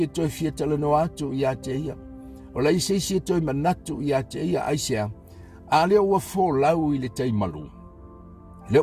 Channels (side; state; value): both; identical; correlation 1.00